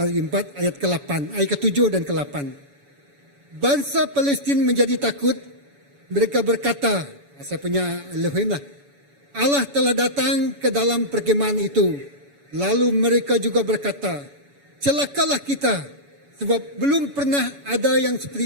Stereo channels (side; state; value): left; late; 7.0 ms